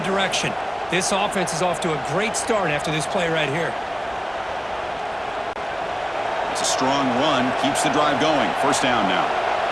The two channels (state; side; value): identical; both; correlation 1.00